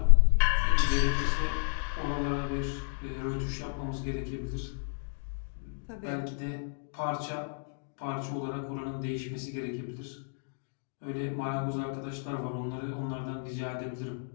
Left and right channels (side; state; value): right; silent; digital silence